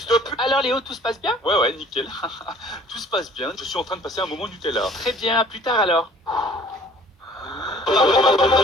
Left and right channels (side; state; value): both; normal; correlation 0.52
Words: de pute? Alors Léo, tout se passe bien? Ouais, nickel. Tout se passe bien. Je suis en train de passer un moment Nutella. Très bien, à plus tard alors.